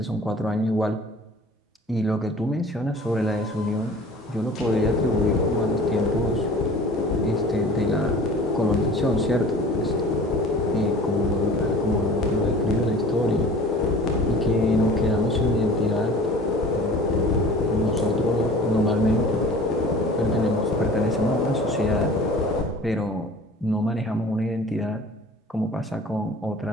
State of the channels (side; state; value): both; normal; correlation 0.44